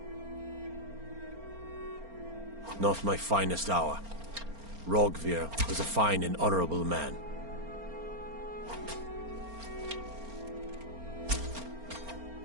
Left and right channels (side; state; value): left; late; 4.3 ms